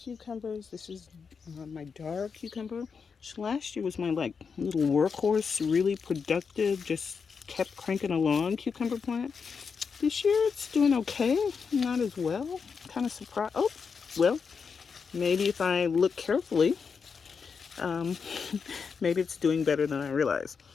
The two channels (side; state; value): right; quieter; 5.7 dB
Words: This is my dark cucumber, which last year was my like little workhorse, really productive, just kept cranking along cucumber plant. This year it's doing okay, not as well. Kind of surprised. Oh, well, maybe if I look carefully, um, maybe it's doing better than I realized.